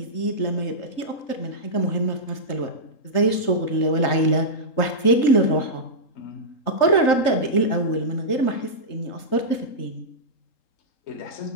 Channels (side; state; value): right; late; 3.8 ms